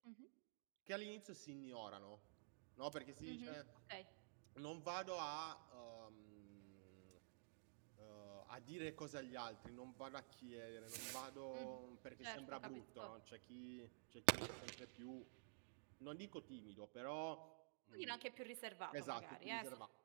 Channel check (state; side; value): silent; left; digital silence